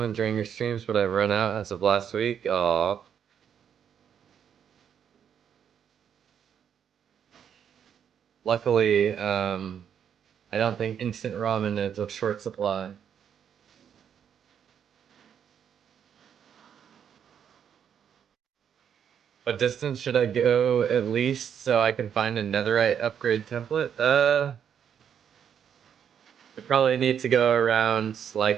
during your streams, but I've run out as of last week. Aw. Luckily, I don't think instant ramen is of short supply. What distance should I go at least so I can find a netherite upgrade template? We probably need to go around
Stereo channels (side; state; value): left; quieter; 8.4 dB